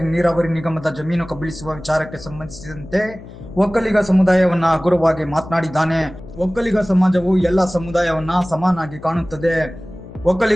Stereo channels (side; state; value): left; noise; hum, 17 dB below the sound